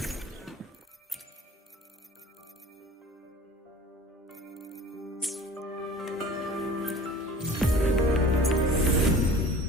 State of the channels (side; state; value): both; normal; correlation 0.43